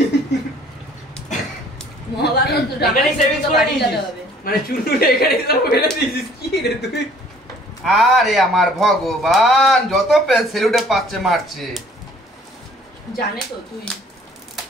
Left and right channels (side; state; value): both; normal; correlation 0.56